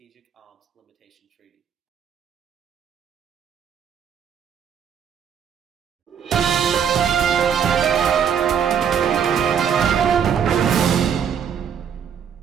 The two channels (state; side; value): quieter; left; 7.9 dB